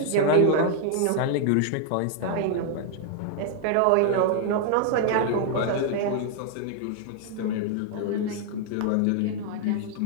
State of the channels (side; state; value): both; different; correlation 0.00